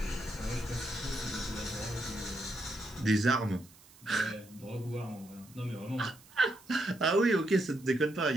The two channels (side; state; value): right; noise; hiss, 24 dB below the sound